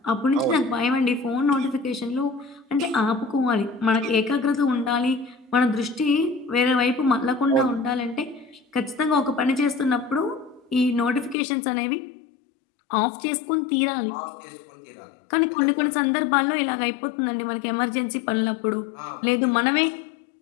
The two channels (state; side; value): drops out; right; at 11.4 s